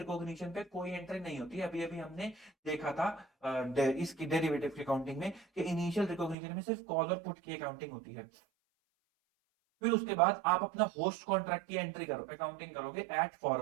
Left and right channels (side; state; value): left; drops out; at 6.4 s